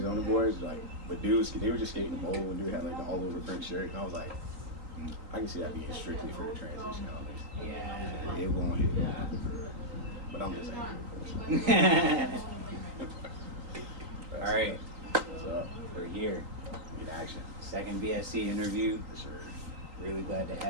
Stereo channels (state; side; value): late; left; 3.8 ms